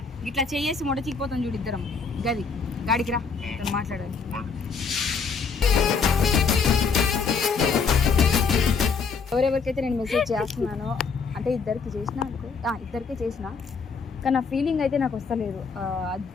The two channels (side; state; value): right; quieter; 5.3 dB